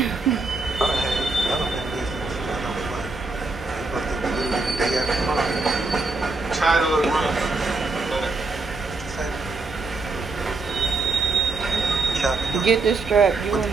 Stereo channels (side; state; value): left; quieter; 3.6 dB